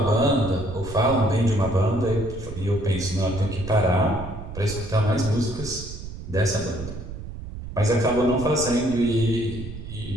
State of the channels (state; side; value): noise; right; rumble, 10 dB below the sound